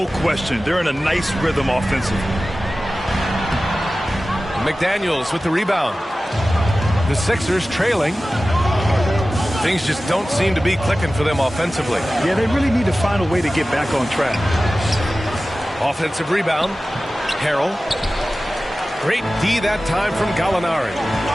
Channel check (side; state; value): both; normal; correlation 0.96